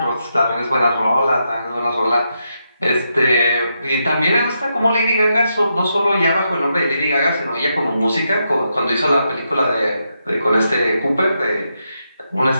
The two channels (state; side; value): inverted; both; correlation -0.83